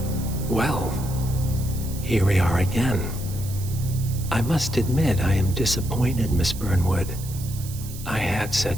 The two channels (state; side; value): noise; right; hiss, 14 dB below the sound